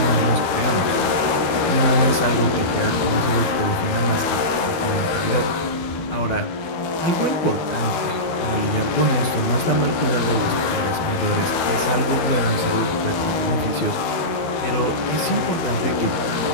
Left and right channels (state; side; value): late; right; 13 ms